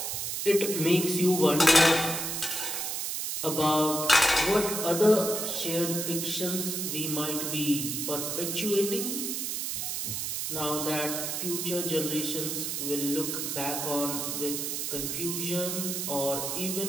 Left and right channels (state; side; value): noise; right; hiss, 2 dB below the sound